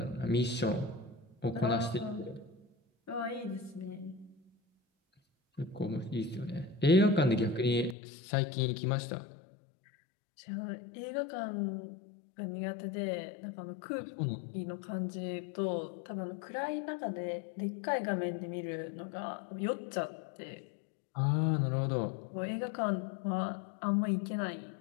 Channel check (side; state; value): right; drops out; at 8.0 s